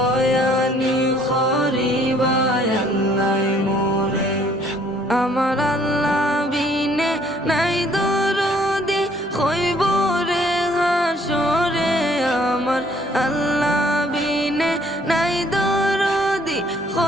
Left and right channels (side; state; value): both; normal; correlation 0.61